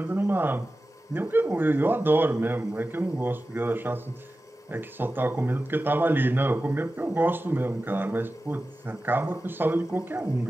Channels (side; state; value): both; normal; correlation 0.94